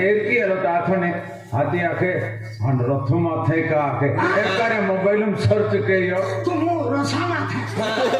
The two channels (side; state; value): both; identical; correlation 1.00